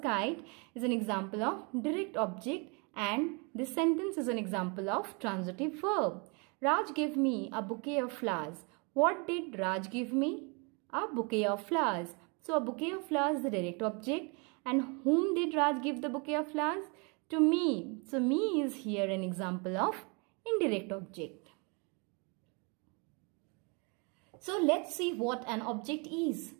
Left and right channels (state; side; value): quieter; left; 32.6 dB